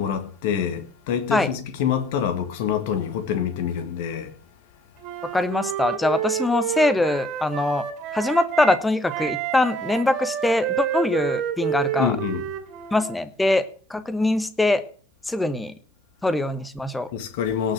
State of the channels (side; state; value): both; normal; correlation 0.62